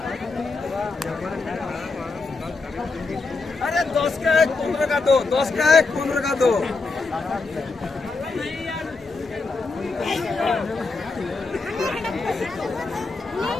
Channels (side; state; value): right; quieter; 3.9 dB